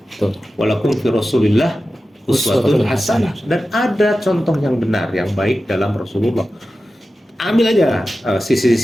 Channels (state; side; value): normal; both; correlation 0.93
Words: Walakum fi Rasulillah uswatun hasanah, dan ada contoh yang benar, yang baik dalam Rasulullah. Ambil aja